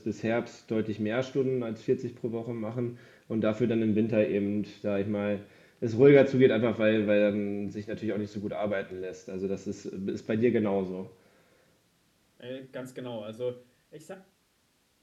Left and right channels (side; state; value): both; identical; correlation 1.00